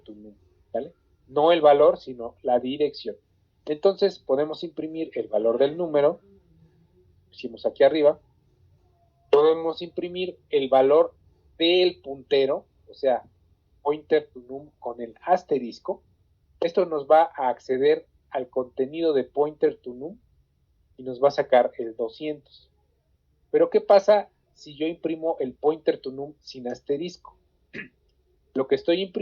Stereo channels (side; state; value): both; identical; correlation 1.00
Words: num, ¿vale? No el valor, sino la dirección. Entonces podemos imprimir el valor del número, pusimos aquí arriba, podemos imprimir el valor del puntero, o sea, pointer to num con el asterisco. Esto nos va a acceder al contenido de pointer to num y nos va a sacar el 200. Pero ¿qué pasa si yo imprimo el pointer to num sin asterisco? Lo que estoy